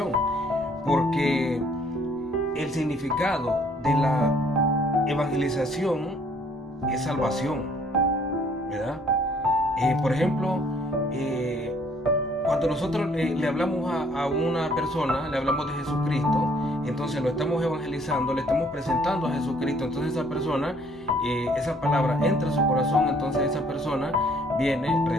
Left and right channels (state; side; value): normal; both; correlation 0.61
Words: Porque el significado de la evangelización es salvación, ¿verdad? Por ejemplo, cuando nosotros le hablamos a una persona, le hablamos de Jesucristo, entonces lo estamos evangelizando, le estamos presentando a Jesucristo. Entonces esa persona, esa palabra entra a su corazón, entonces esa persona viene,